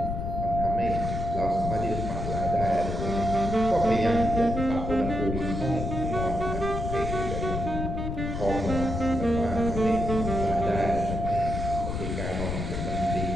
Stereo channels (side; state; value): left; noise; rumble, 3 dB below the sound